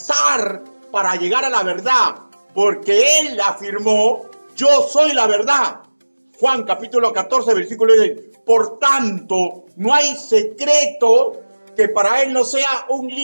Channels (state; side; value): inverted; both; correlation -1.00